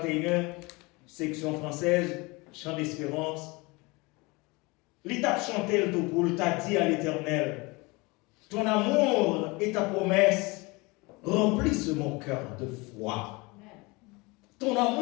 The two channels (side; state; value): right; quieter; 25.4 dB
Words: section française, chant d'espérance. L'étape chantelle tout pour t'a dit à l'Éternel, ton amour et ta promesse remplissent mon cœur de foi. Ton